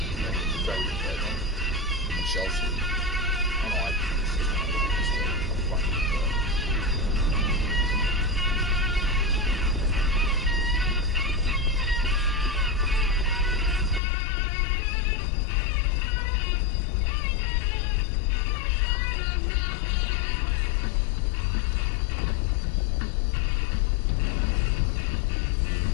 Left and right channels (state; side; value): drops out; right; at 14.0 s